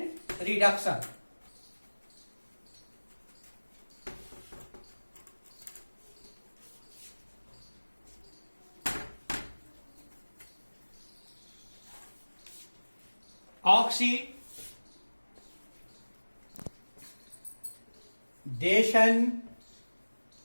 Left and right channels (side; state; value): both; inverted; correlation -1.00